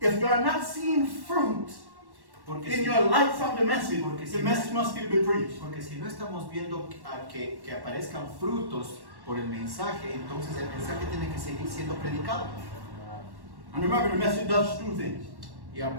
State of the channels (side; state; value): left; late; 1.1 ms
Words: not seeing fruit Porque in si, your life from the message, Porque the si- message must still be preached. porque si no estamos viendo que aparezcan frutos por el mensaje, entonces el mensaje tiene que seguir siendo predicado. And remember, the message does two things. Y